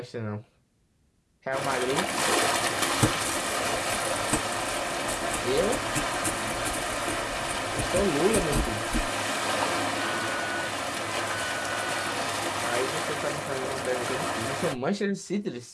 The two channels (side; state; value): both; identical; correlation 1.00